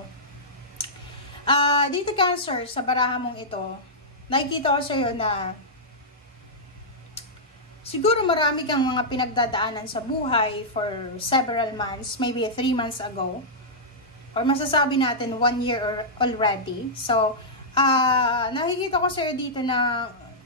Dito Cancer, sa baraha mong ito, nakikita ko sa iyo na siguro marami kang mga pinagdadaanan sa buhay for several months, maybe 3 months ago, or masasabi natin 1 year already. So, nakikita ko sa iyo dito na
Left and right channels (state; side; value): normal; both; correlation -0.10